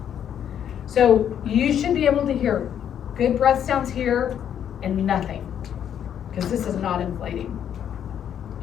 So you should be able to hear good breath sounds here and nothing, because this is not inflating.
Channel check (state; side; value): quieter; right; 9.3 dB